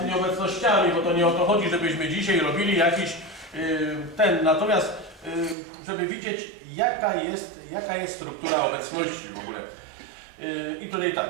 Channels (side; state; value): left; drops out; at 5.6 s